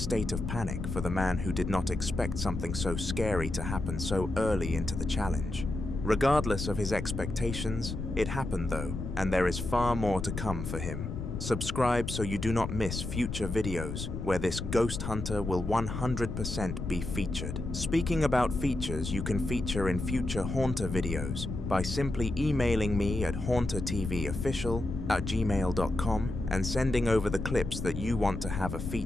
of panic for the man who did not expect something so scary to happen so early into the challenge. Regardless of his expectations, it happened though, and there is far more to come for him. Subscribe so you do not miss future videos where this ghost hunter will 100% be featured. Speaking about features you can feature in future Haunter videos by simply emailing me at hauntertvofficial@gmail.com and sending over the clips that you want to have a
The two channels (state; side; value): noise; left; rumble, 5 dB below the sound